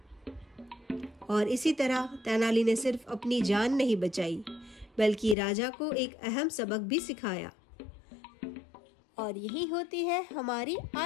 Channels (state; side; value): drops out; right; at 5.4 s